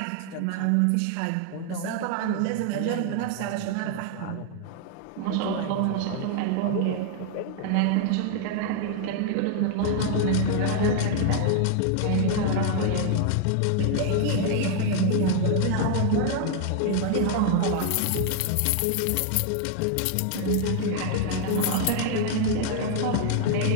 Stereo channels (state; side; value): different; both; correlation 0.00